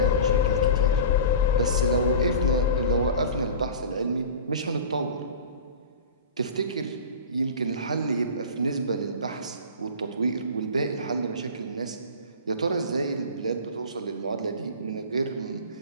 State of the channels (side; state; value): both; inverted; correlation -0.34